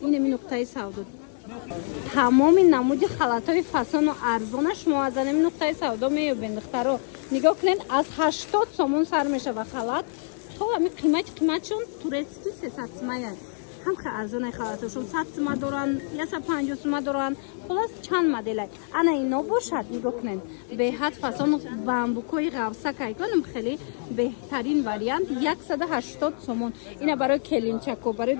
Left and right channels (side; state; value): right; silent; 61 dB below the other